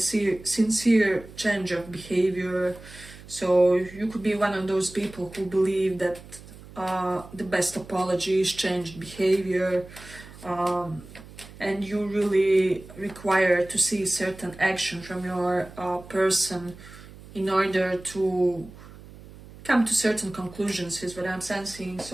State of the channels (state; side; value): noise; right; hum, 18 dB below the sound